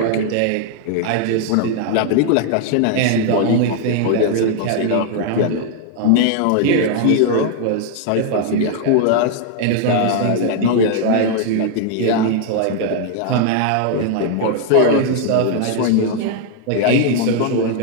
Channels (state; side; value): different; both; correlation 0.00